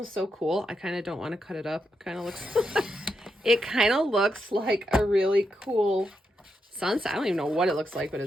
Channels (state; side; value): normal; both; correlation 0.83